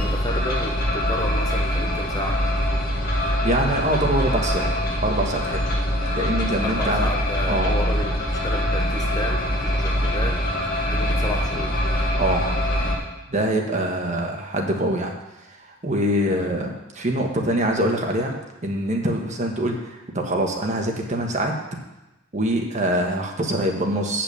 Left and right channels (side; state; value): both; normal; correlation 0.48